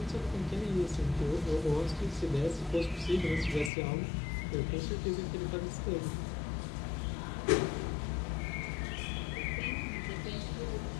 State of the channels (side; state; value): right; drops out; at 3.7 s